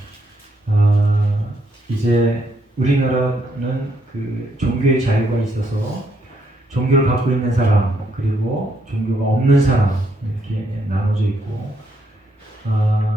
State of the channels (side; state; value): both; normal; correlation 0.74